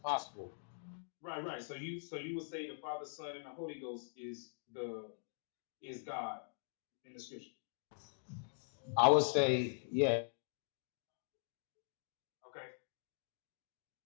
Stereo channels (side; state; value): right; silent; digital silence